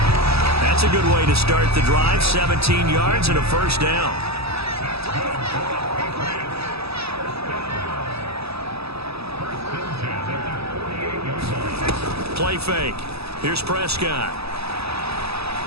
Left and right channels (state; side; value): late; left; 0.78 ms